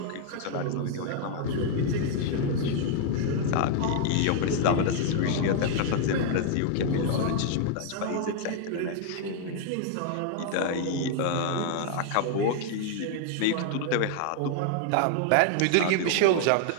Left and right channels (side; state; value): both; different; correlation 0.00